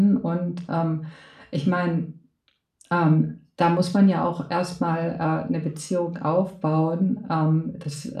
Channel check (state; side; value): identical; both; correlation 1.00